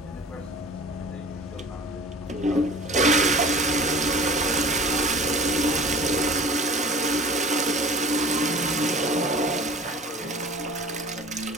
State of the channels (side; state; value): both; normal; correlation 0.43